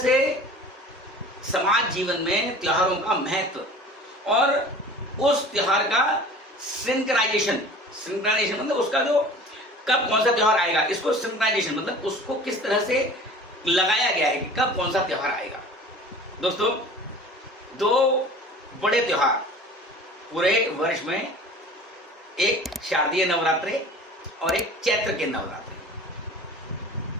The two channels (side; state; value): both; normal; correlation 0.43